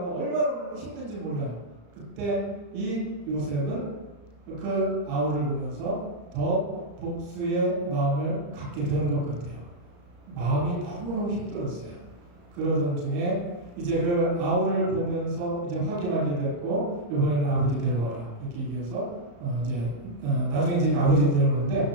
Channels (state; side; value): late; left; 35 ms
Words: 얼마나 힘든지 몰라요. 그때 이 요셉은 그 아우를 보면서 더 복수의 마음을 갖게 되는 것 같아요. 마음이 너무너무 힘들었어요. 그러던 중에 이제 그 아우를 보면서 이제 확인하게 됐고 이번에는 아버지 데려와라 이렇게 얘기해서 나중에 이제 아버지